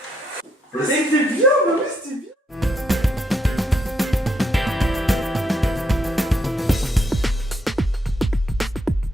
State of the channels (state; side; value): normal; both; correlation 0.76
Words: C'était bien, bah oui, c'était bien.